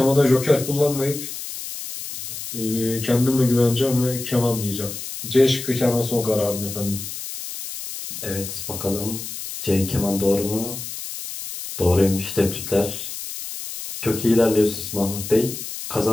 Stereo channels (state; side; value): noise; left; hiss, 8 dB below the sound